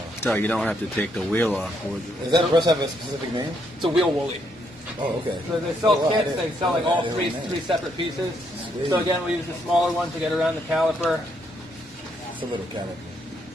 So you don't have to take the wheel off. Does that brush have a specific name? It's a wheel woolly. Oh, okay. So they sell Oh, wow, I kits, didn't- they sell like all I three didn't know. separate pieces. Sweet. So again, we use the smaller one to get around the caliper. It's a little caliper.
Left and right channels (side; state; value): both; normal; correlation 0.74